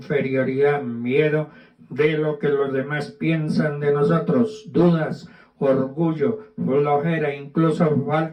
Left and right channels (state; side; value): identical; both; correlation 1.00